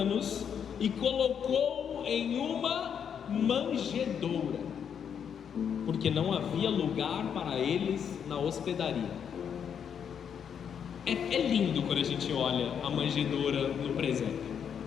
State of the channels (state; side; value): quieter; right; 7.9 dB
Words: e colocou-o em uma manjedoura, porque não havia lugar para eles na hospedaria. É lindo quando a gente olha a manjedoura no presépio,